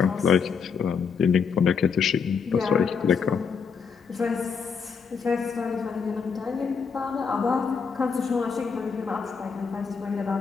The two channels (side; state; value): right; quieter; 6.0 dB